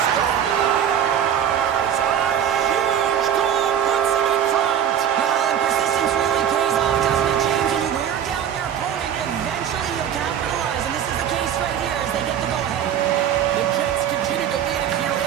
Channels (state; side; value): quieter; left; 9.3 dB